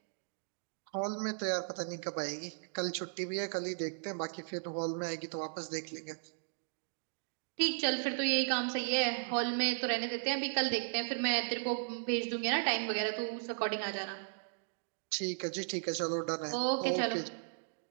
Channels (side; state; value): left; silent; digital silence